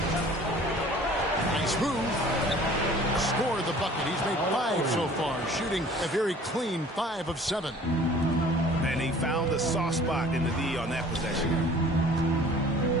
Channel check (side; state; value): both; normal; correlation 0.49